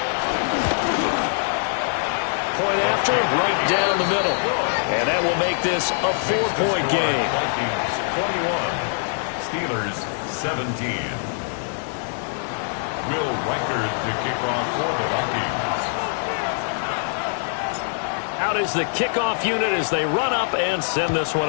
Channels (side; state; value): right; silent; 60 dB below the other